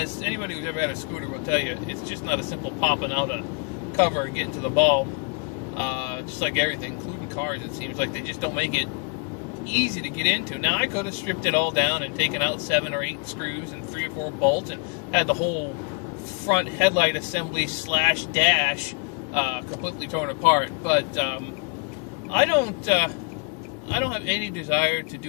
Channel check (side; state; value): right; quieter; 35.7 dB